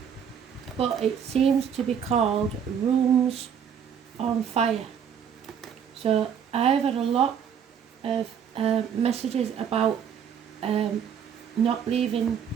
but it seems to be called Rooms on Fire. So I've had a lot of messages about not leaving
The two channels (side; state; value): left; quieter; 7.9 dB